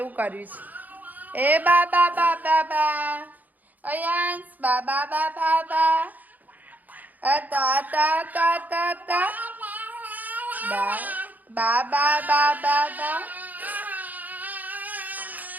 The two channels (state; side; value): late; left; 0.082 ms